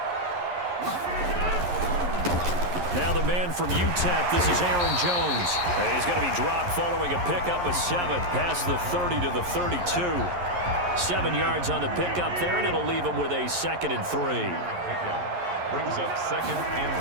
Now the man from UTEP, this is Aaron Jones. And he's going to be dropped following a pickup of 7 past the 30 to the 32. 7 yards on the pickup there, and it'll leave him with a 2nd and 3. Brings up 2nd and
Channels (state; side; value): late; left; 11 ms